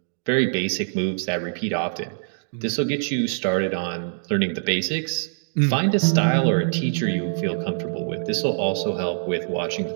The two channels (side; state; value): left; silent; digital silence